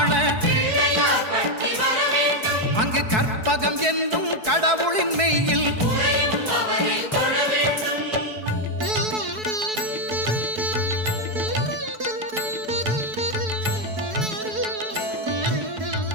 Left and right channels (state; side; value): late; left; 4.6 ms